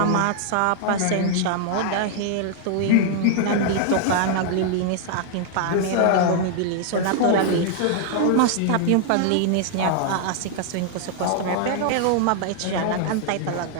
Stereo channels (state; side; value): different; both; correlation 0.00